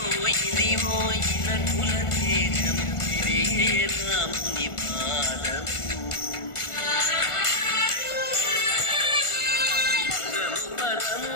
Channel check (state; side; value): late; right; 1.4 ms